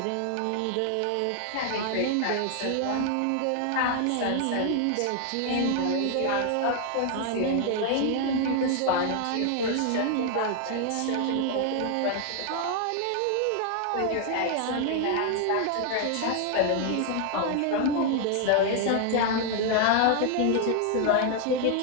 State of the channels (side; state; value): both; different; correlation 0.00